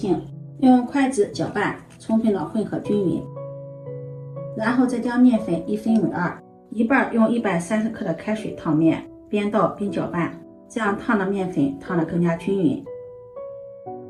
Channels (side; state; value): both; identical; correlation 1.00